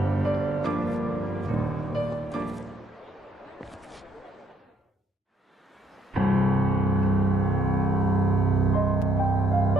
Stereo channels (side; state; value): both; normal; correlation 0.71